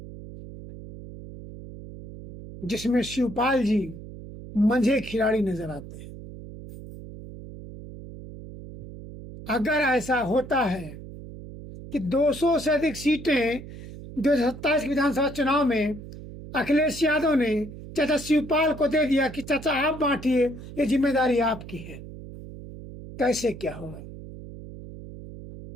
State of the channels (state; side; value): noise; right; hum, 13 dB below the sound